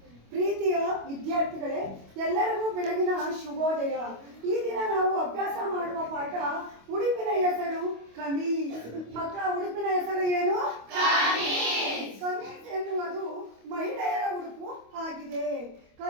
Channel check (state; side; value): late; left; 25 ms